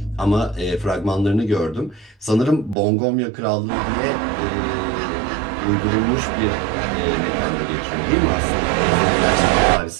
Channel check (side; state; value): left; drops out; at 2.8 s